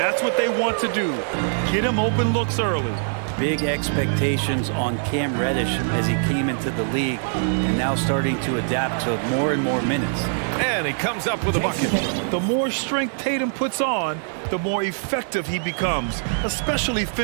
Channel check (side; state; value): left; silent; digital silence